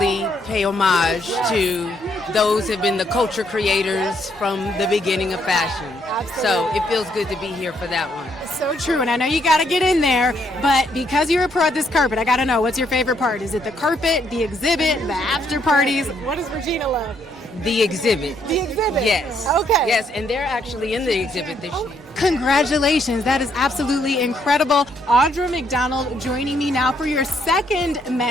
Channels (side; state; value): both; normal; correlation 0.72